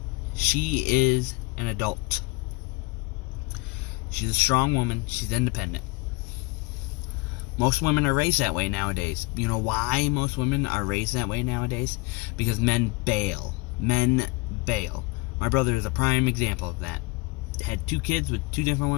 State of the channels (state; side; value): quieter; right; 25.1 dB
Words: she is an adult. She's a strong woman. She's independent. Most women are raised that way nowadays. You know why most women are raised that way nowadays? Because men bail. Men bail. My brother is a prime example of that. Had 2 kids with 2 different